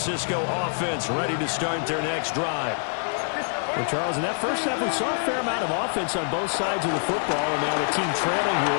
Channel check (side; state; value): right; silent; digital silence